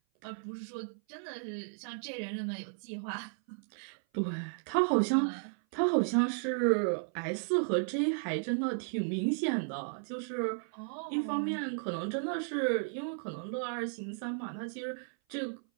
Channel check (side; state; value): left; silent; 55 dB below the other